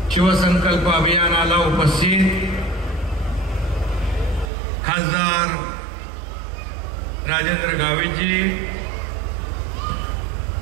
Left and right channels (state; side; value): drops out; left; at 4.5 s